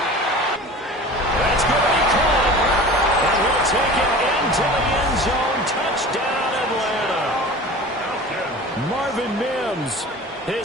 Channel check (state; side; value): normal; both; correlation 0.38